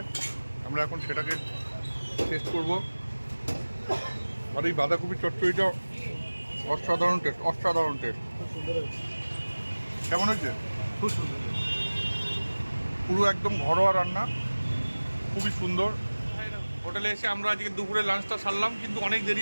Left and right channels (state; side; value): inverted; both; correlation -1.00